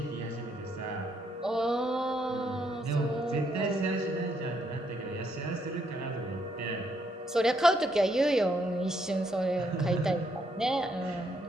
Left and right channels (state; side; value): normal; both; correlation 0.74